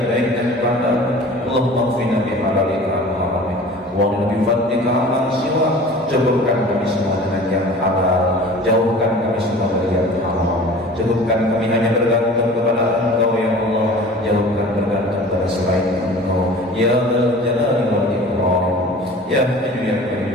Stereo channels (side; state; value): both; normal; correlation 0.42